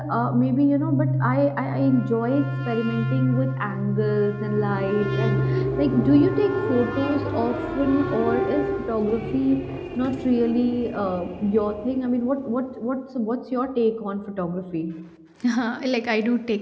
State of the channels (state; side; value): identical; both; correlation 1.00